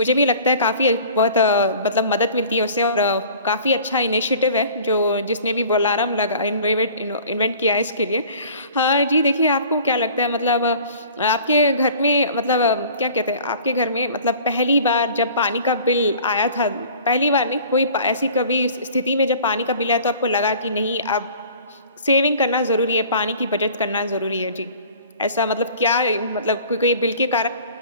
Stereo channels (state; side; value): inverted; both; correlation -0.47